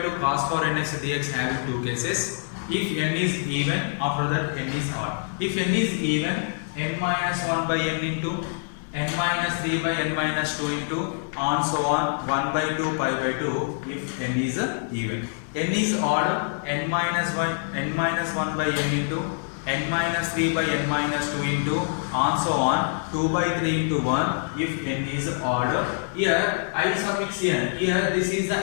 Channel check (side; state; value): right; silent; digital silence